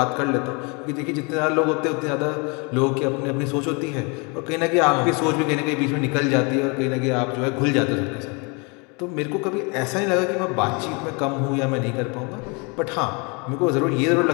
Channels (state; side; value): quieter; right; 31.2 dB